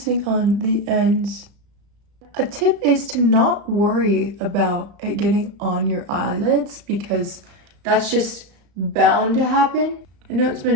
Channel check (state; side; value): late; left; 35 ms